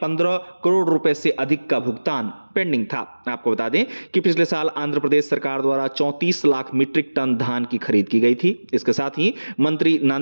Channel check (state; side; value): inverted; both; correlation -1.00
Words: करोड़ रुपए से अधिक का भुगतान पेंडिंग था। आपको बता दें कि पिछले साल आंध्र प्रदेश सरकार द्वारा 34 लाख मीट्रिक टन धान की खरीद की गई थी। इसके साथ ही मंत्री